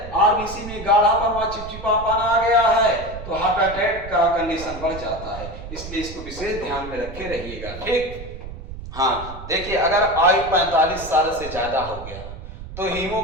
आरबीसी में गाढ़ापन व चिपचिपापन आ गया है, तो हार्ट अटैक का कंडीशन बढ़ जाता है। इसलिए इसको विशेष ध्यान में रखे रहिएगा। ठीक, हाँ देखिए, अगर आयु 45 साल से ज्यादा हो गया तो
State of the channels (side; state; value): right; noise; rumble, 12 dB below the sound